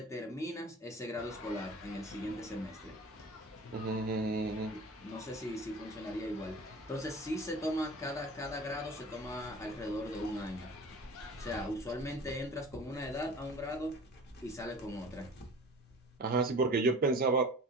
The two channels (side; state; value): both; normal; correlation 0.42